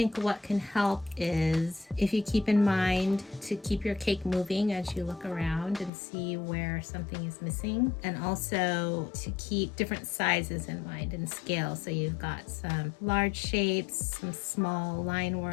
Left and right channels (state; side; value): drops out; right; at 5.9 s